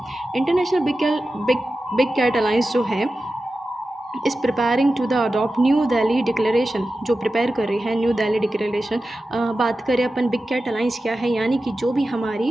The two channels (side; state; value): both; normal; correlation 0.93